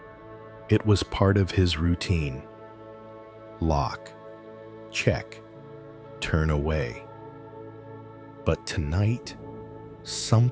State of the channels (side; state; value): both; identical; correlation 1.00